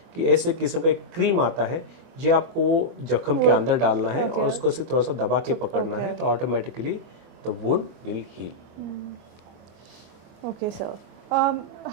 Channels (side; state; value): left; late; 24 ms